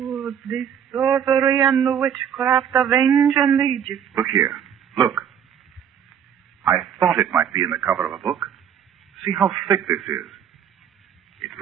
the sorcery and the witchcraft of ancient Egypt. Look here. Look. I thought it might be in the cover of a book. See how thick this is. It's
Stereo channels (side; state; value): left; quieter; 8.6 dB